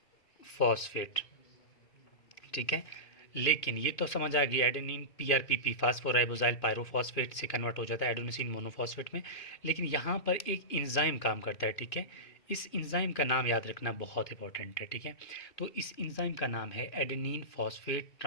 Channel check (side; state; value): right; late; 2.5 ms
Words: ठीक है, लेकिन ये तो समझ आ गई, एडेनिन PRPP फास्फोराइबोजाइल पायरोफॉस्फेट से कन्वर्ट हो जाता है एडेनोसिन मोनोफॉस्फेट में। लेकिन यहाँ पर एक इंजाइम काम करता है। ठीक है, इस इंजाइम का नाम याद रखना बहुत इंपॉर्टेंट है। ठीक है, तो इस इंजाइम का नाम है adenine phosphate